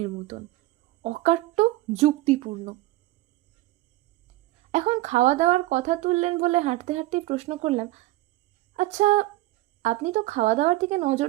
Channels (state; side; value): quieter; left; 18.2 dB